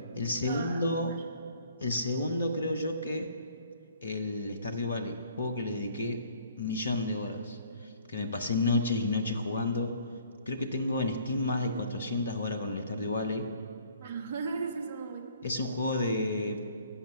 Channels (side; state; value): both; inverted; correlation -0.57